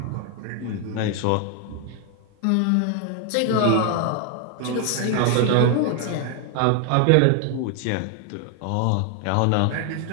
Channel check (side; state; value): both; different; correlation 0.01